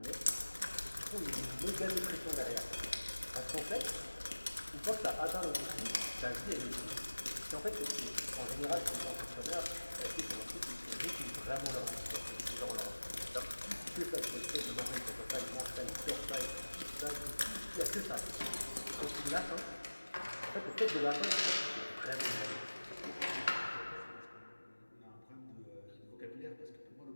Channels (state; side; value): inverted; both; correlation -1.00